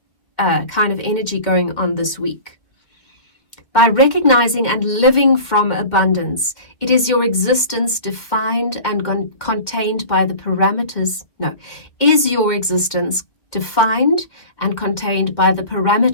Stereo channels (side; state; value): right; late; 1.9 ms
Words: kind of energy going on this week. By recognizing and living from abundance, it is your existence defined and contained by the parameters. Is your existence defined and contained by the